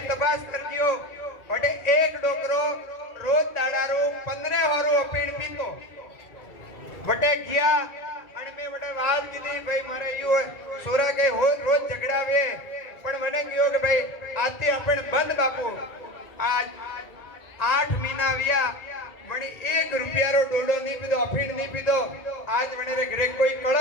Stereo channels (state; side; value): late; right; 2.3 ms